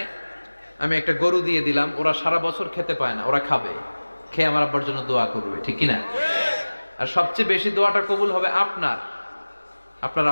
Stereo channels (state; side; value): inverted; both; correlation -1.00